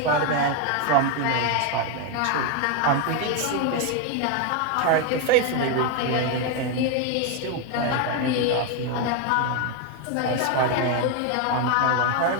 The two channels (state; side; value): different; both; correlation 0.01